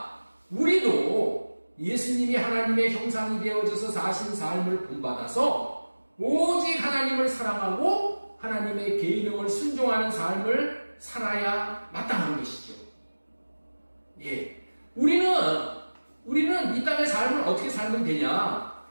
우리도 예수님이 하나님의 형상이 되어져서 사신 삶을 본받아서 오직 하나님을 사랑하고 하나님의 계명을 순종하는 삶을 살아야 마땅한 것이죠. 예. 우리는 이 땅의 삶을 어떻게 살면 되냐?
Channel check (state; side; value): inverted; both; correlation -1.00